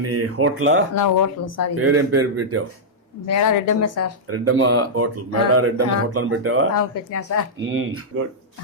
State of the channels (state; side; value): normal; both; correlation -0.09